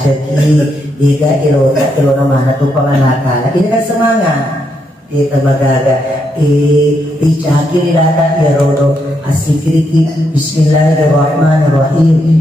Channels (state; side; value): normal; both; correlation 0.79